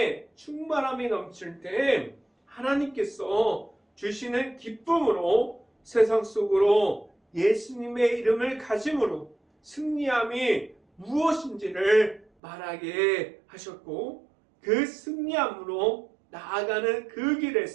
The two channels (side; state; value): left; drops out; at 12.2 s